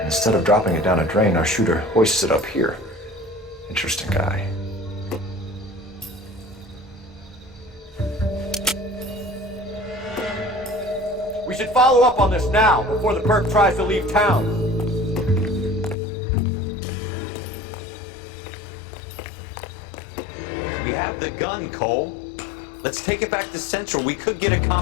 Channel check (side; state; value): right; drops out; at 16.0 s